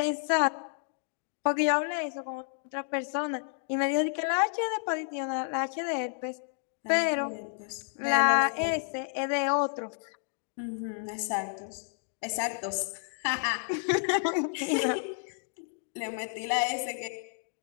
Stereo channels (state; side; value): silent; right; 57 dB below the other